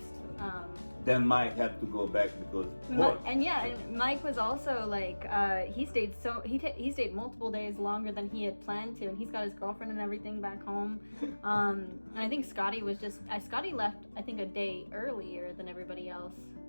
Then Mike had to go back because and Mike was also like he stayed multiple days longer than he had planned to, and he's got his girlfriend and everything back home. And I think Scotty left I think a day earlier than everybody else,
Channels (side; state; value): both; inverted; correlation -1.00